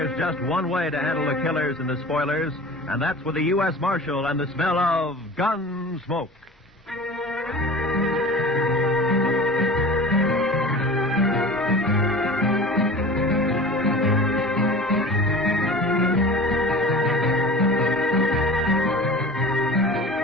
just one way to handle the killers and the spoilers, and that's with the U.S. Marshal and the smell of Gunsmoke.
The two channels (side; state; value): both; normal; correlation 0.38